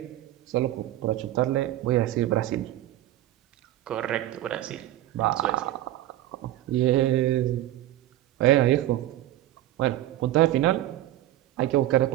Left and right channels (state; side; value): quieter; left; 14.2 dB